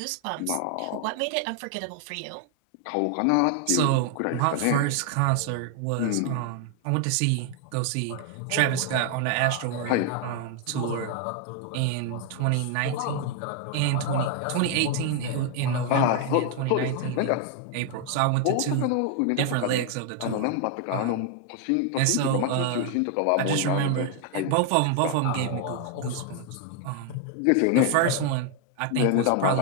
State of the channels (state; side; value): different; both; correlation 0.00